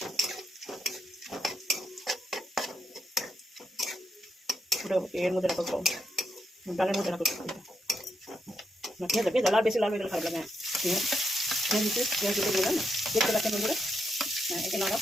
এর মধ্যে রাখো, ডালের মধ্যে রাখো। পেঁয়াজ লাল, বেশি লাল হয়ে গেলে খারাপ লাগে। পেঁয়াজ দিলাম না, দেখতে পাচ্ছেন বন্ধুরা। হ্যাঁ, এটা নাড়াও।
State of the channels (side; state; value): both; normal; correlation 0.80